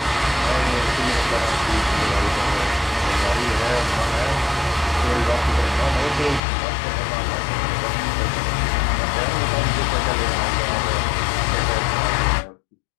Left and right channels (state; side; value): drops out; right; at 6.4 s